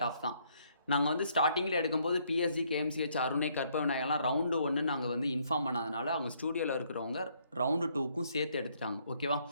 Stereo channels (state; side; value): inverted; both; correlation -0.68